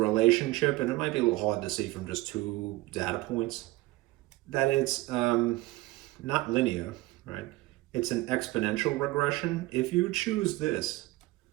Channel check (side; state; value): left; quieter; 19.1 dB